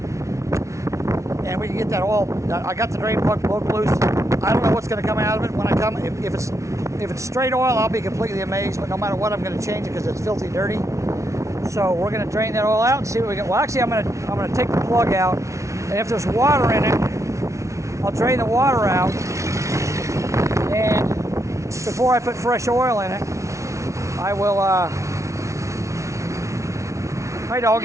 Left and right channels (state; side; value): late; left; 0.14 ms